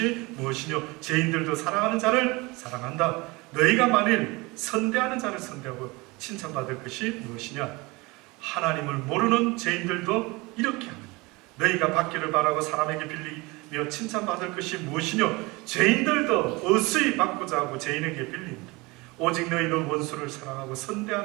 무엇이뇨? 죄인들도 사랑하는 자를 사랑한다. 너희가 만일 선대하는 자를 선대하고 칭찬받을 것이 무엇이냐? 하나님을 모르는 죄인들도 이렇게 합니다. 너희가 받기를 바라고 사람에게 빌리며 칭찬받을 것이 무엇이뇨? 죄인들도 어수히 받고자 하고 죄인에게 빌립니다. 오직 너희는 원수를 사랑하고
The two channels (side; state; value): left; quieter; 24.3 dB